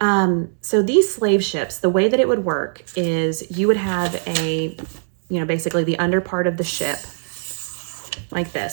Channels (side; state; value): left; silent; 65 dB below the other